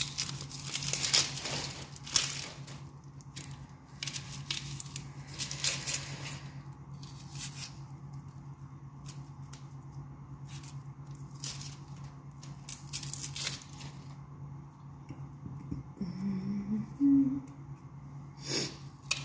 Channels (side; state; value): both; identical; correlation 1.00